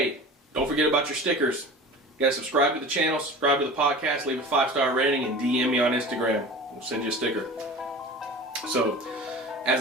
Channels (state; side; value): normal; both; correlation 0.37